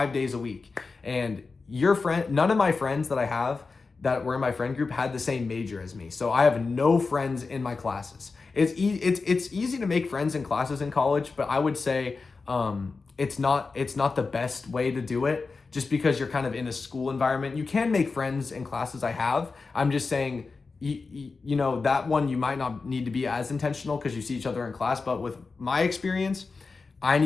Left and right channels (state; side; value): quieter; right; 4.3 dB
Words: days a week. And none of my friends that I have that were in my friend group had the same major as me. So I have no friends in my classes. It's easy to make friends in classes in college, but I would say it's not the best way to do it just because you're kind of in a school environment. You can make friends in classes I have. I'm just saying, that one you might not need to be as intentional because you see each other in class. But with my experience, I